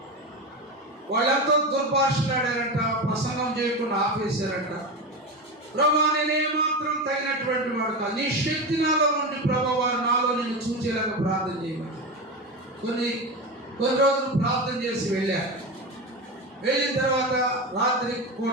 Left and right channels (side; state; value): both; normal; correlation 0.21